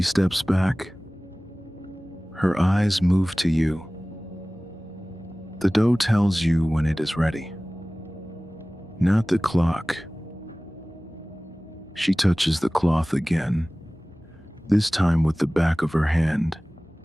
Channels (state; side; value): normal; both; correlation 0.98